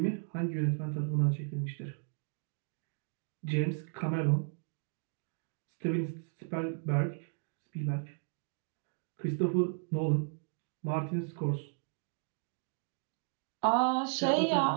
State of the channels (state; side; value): silent; left; 54 dB below the other